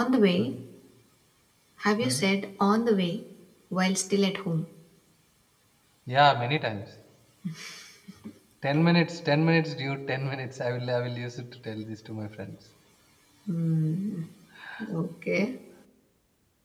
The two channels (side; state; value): both; identical; correlation 1.00